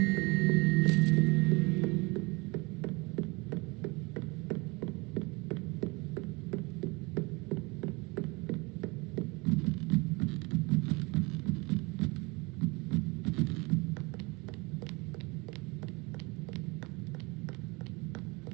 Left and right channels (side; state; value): left; quieter; 26.3 dB